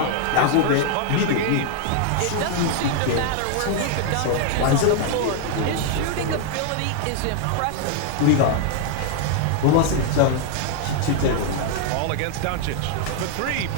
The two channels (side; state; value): both; different; correlation 0.00